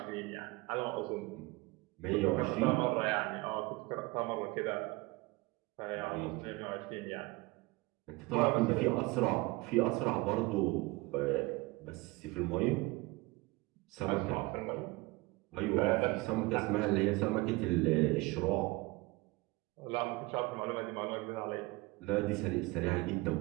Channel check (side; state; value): left; quieter; 22.7 dB